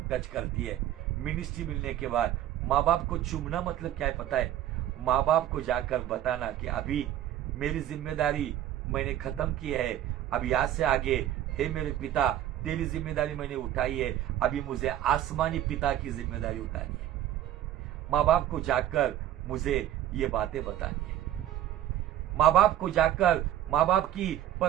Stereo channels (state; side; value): quieter; left; 12.1 dB